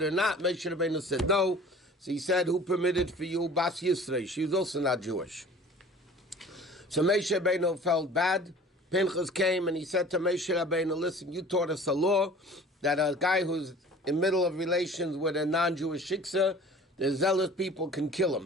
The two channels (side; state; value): both; normal; correlation 0.45